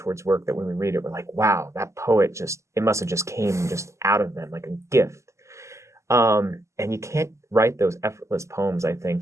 work that when we read it, we're like, wow, that poet it must have just came just out of them like a gift. And you can't write those effortless poems, I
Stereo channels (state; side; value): late; left; 0.14 ms